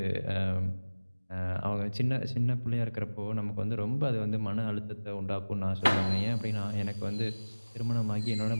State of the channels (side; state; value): both; inverted; correlation -1.00